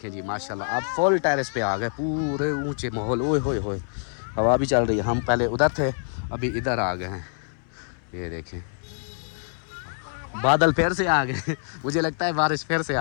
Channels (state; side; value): silent; right; 61 dB below the other